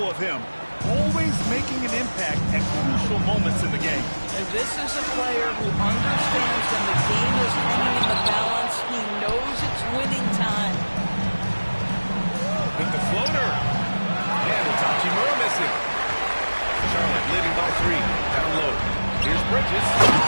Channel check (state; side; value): inverted; both; correlation -1.00